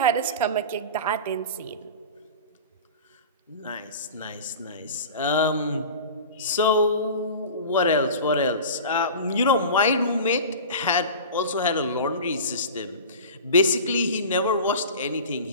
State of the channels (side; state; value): both; inverted; correlation -0.34